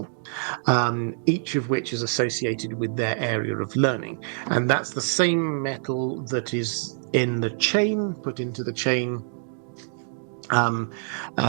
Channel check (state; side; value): silent; left; digital silence